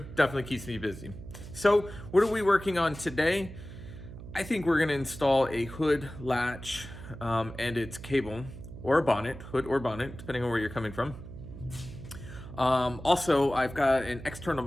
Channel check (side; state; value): right; noise; hum, 13 dB below the sound